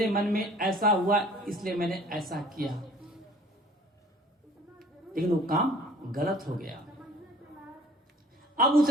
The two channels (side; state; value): both; normal; correlation 0.51